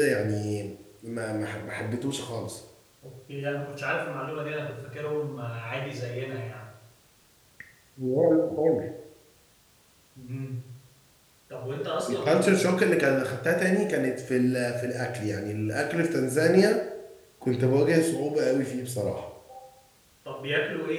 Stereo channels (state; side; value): identical; both; correlation 1.00